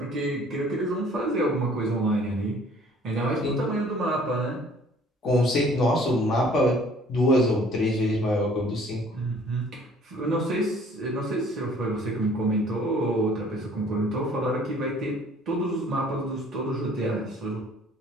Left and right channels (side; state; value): both; normal; correlation 0.55